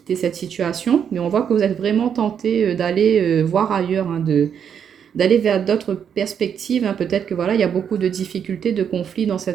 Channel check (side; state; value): left; quieter; 8.0 dB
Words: cette situation, mais on voit que vous êtes vraiment tenté d'aller voir ailleurs, hein, d'aller vers d'autres perspectives. Hein. Peut-être que voilà, il y a beaucoup de difficultés, de conflits dans